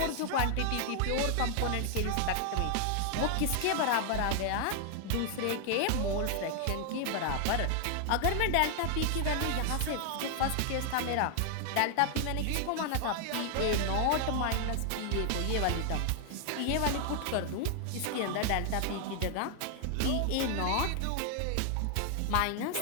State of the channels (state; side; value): different; both; correlation 0.00